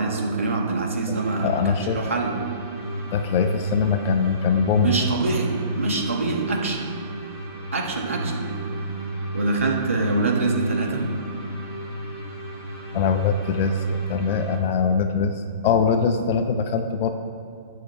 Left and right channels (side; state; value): both; inverted; correlation -0.45